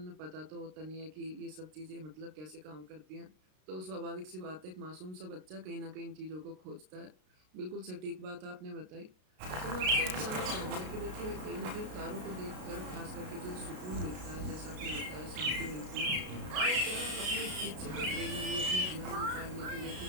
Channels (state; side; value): late; left; 33 ms